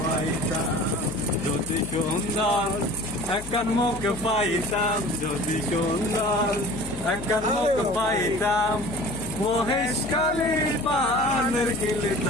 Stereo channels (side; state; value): left; noise; hum, 14 dB below the sound